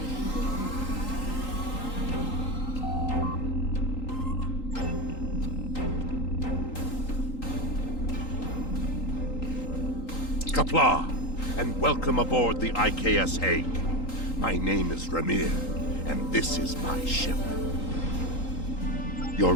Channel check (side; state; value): right; late; 3.8 ms